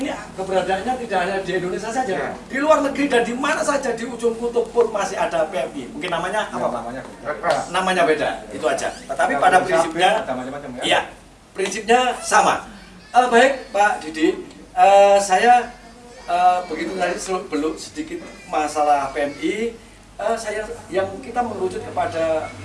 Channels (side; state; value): both; identical; correlation 1.00